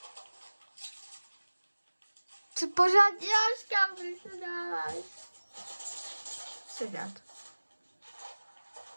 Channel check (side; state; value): both; inverted; correlation -1.00